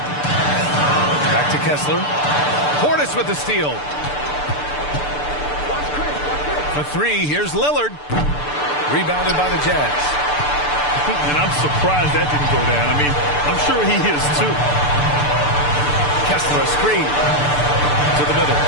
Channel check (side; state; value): right; late; 6.8 ms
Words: Back to Kessler. Portis with the steal. For three, here's Lillard. Rebounded by the Jazz. And I'm surprised that didn't go down. I mean, I'm sure he is too. Kessler, a screen. To the middle.